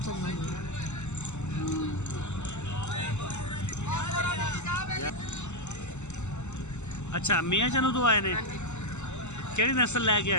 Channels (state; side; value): late; right; 0.83 ms